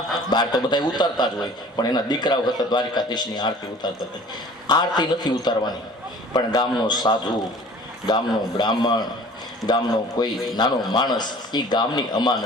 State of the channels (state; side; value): normal; both; correlation 0.47